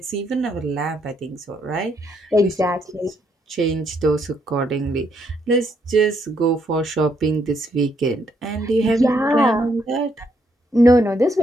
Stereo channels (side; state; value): both; normal; correlation 0.74